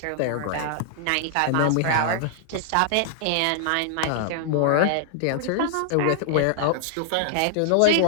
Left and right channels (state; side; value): different; both; correlation -0.01